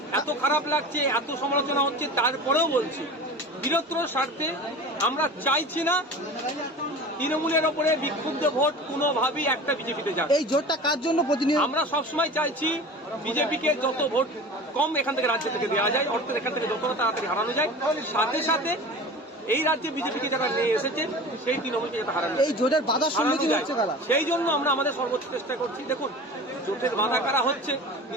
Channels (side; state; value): both; normal; correlation 0.36